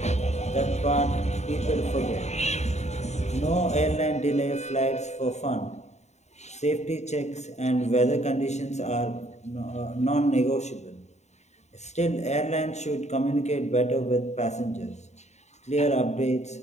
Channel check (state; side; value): late; right; 0.33 ms